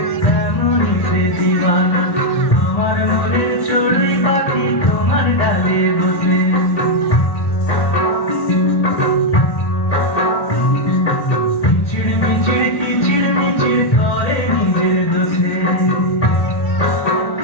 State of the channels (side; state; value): right; late; 1.8 ms